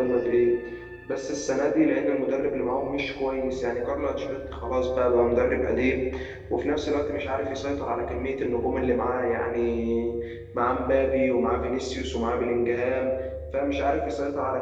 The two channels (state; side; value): identical; both; correlation 1.00